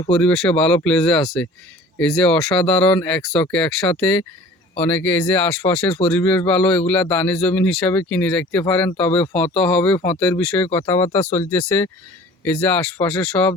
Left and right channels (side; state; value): both; normal; correlation 0.46